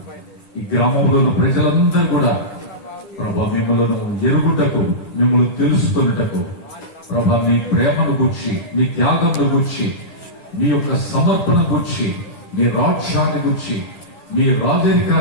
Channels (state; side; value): late; right; 10 ms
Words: ఈ గ్రామంలో ఉన్న ప్రజలందరూ కూడా ప్రభా మిమ్మల్ని ఎరుగుటకు, మిమ్మల్ని తెలుసుకున్నటకు ప్రభా మీ ప్రేమను గుర్చి, మీ త్యాగంను గుర్చి, మీ యొక్క సమర్పణ గుర్చి, మీ రాజ్యాన్ని గుర్చి, మీ